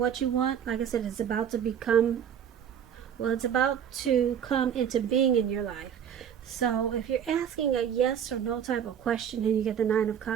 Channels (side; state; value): left; quieter; 8.6 dB